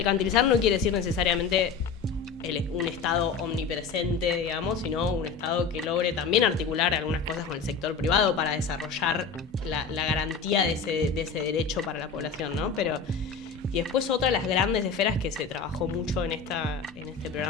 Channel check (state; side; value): quieter; right; 5.4 dB